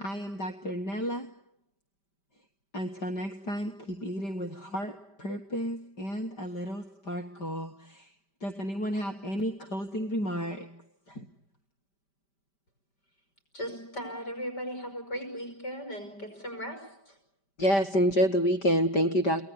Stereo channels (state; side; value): late; right; 5.1 ms